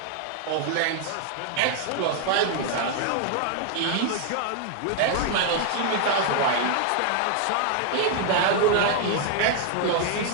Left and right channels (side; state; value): both; different; correlation 0.00